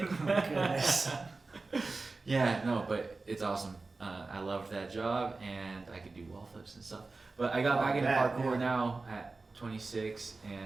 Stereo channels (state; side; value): quieter; left; 3.7 dB